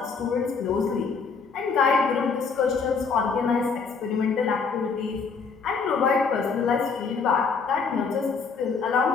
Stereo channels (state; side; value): quieter; right; 5.1 dB